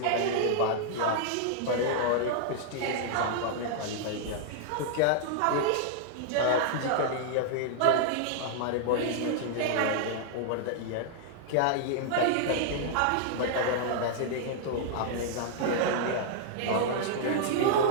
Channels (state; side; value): different; both; correlation -0.01